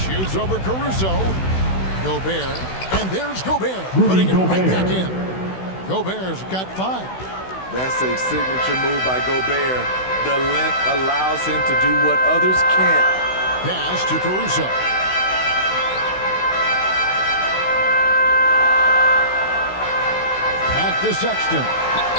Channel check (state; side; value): late; right; 16 ms